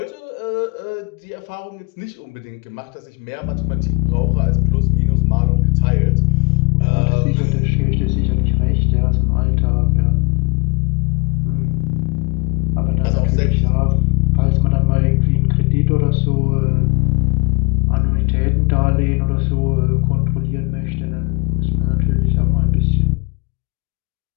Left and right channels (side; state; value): right; quieter; 31.0 dB